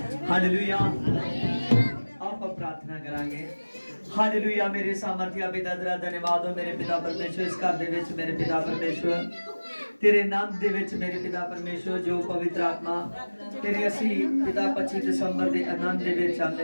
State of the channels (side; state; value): both; inverted; correlation -1.00